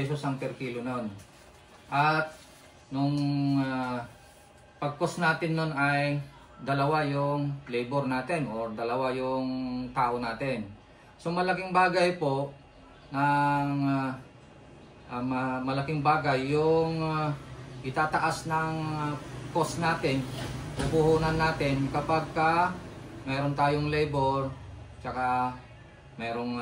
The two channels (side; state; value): both; identical; correlation 1.00